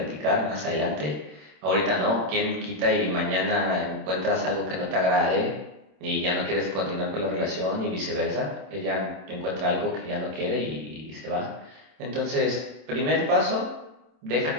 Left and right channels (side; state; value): left; late; 26 ms